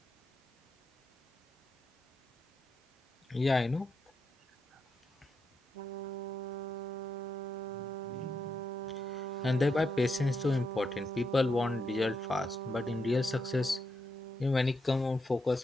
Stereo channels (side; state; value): both; normal; correlation 0.82